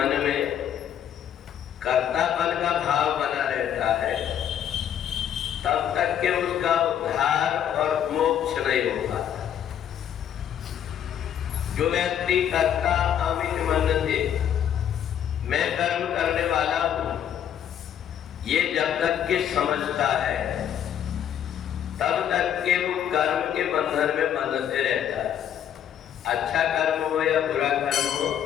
में कर्तापन का भाव बना रहता है तब तक के उसका उद्धार और मोक्ष नहीं हो पाता। जो व्यक्ति कर्ता अमित मन से मैं कर्म करने वाला हूं, ये जब तक के समझता है तब तक के वो कर्म के बंधन में बंधते रहता है। अच्छा कर्म हो या बुरा कर्म हो,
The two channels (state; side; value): quieter; right; 9.7 dB